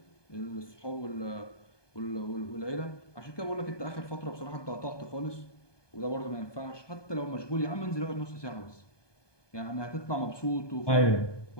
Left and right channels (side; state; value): right; late; 1.2 ms